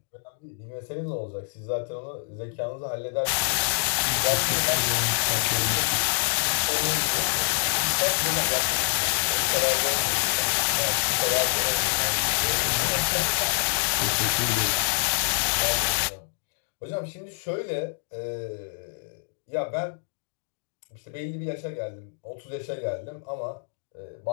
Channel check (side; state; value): right; silent; digital silence